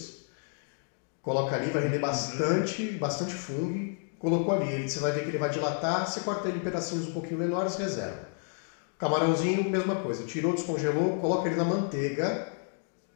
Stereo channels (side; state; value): right; silent; 56 dB below the other